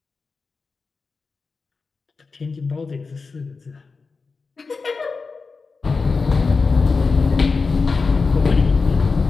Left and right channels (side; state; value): right; quieter; 4.4 dB